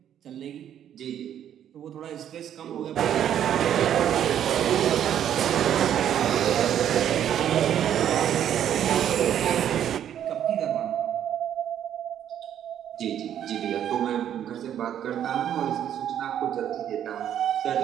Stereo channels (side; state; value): left; quieter; 10.1 dB